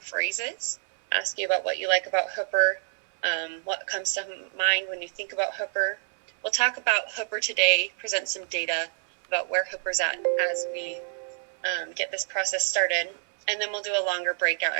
Ask you about what you like about Hooper, what comes to mind when you think about Hooper. We'll talk about Hooper today, present some data about where Hooper's at as we get this process started. And then we'll do a longer breakout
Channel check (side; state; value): left; silent; 60 dB below the other